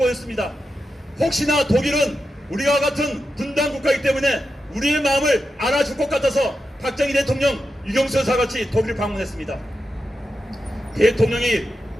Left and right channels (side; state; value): both; normal; correlation 0.89